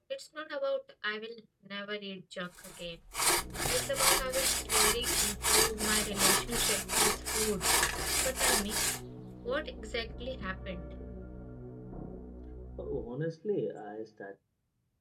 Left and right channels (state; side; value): identical; both; correlation 1.00